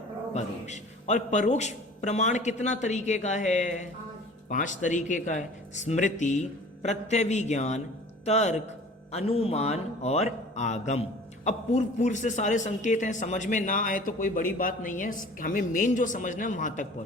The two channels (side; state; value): both; normal; correlation 0.45